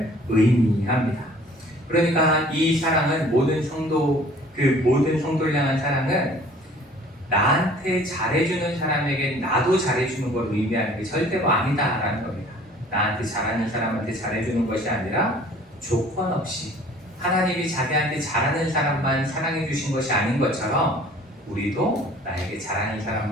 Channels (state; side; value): normal; both; correlation 0.52